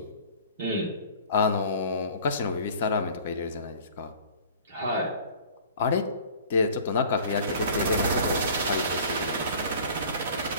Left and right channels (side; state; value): both; inverted; correlation -0.46